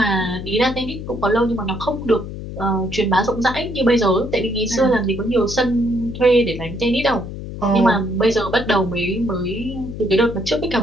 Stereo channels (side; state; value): left; noise; hum, 9 dB below the sound